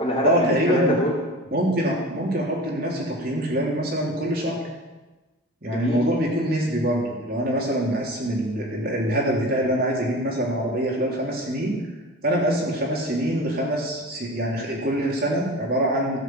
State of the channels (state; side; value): normal; both; correlation 0.35